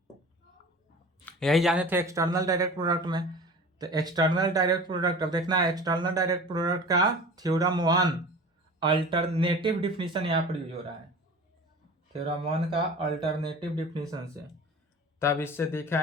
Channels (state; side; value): normal; both; correlation 0.38